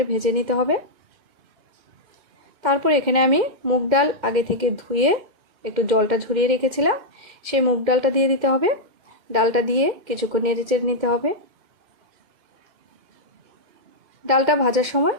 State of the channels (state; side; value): late; left; 2.1 ms